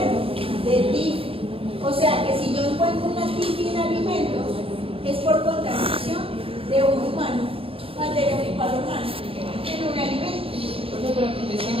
de TIFI. O sea que si yo encuentro una TIFI en alimentos, es por contaminación de un humano, materia fecal humana, en un alimento.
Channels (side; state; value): left; late; 0.27 ms